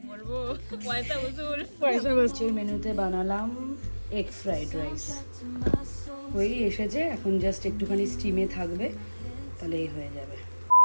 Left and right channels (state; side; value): inverted; both; correlation -1.00